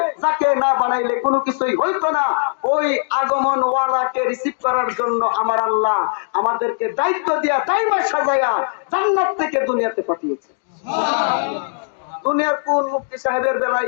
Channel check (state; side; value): silent; right; digital silence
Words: যাকে না বানাইলে কোনো কিছুই হইতো না। ওই আগমন ওয়ালাকে রিসিভ করার জন্য আমার আল্লাহ আমাদেরকে দায়িত্ব দিয়া টাইমে সাজায়া জান্নাত থেকে দুনিয়াতে পাঠিয়েছে। দুনিয়ার কোন মুফতি সাহেবের বেলায়